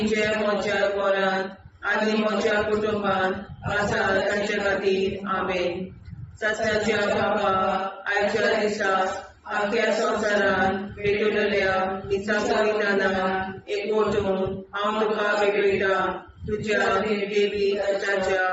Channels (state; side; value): identical; both; correlation 1.00